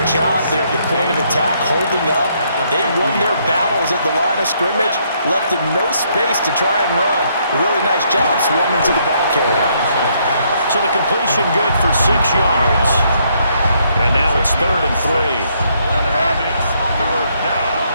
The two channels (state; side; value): inverted; both; correlation -0.71